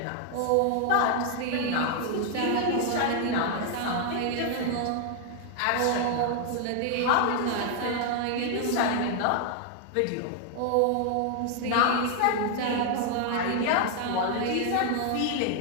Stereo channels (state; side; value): different; both; correlation 0.00